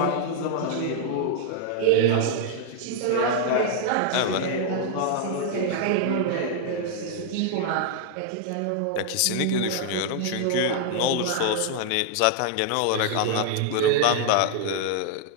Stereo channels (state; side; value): different; both; correlation -0.01